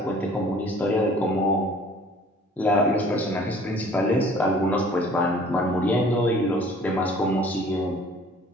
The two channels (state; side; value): normal; both; correlation 0.52